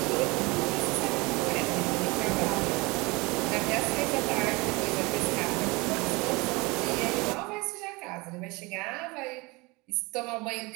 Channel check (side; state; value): left; quieter; 25.0 dB